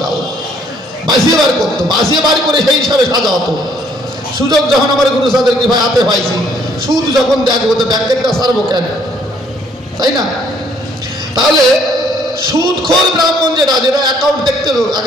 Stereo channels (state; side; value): normal; both; correlation 0.64